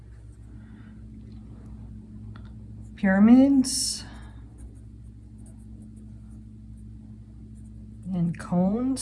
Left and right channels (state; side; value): identical; both; correlation 1.00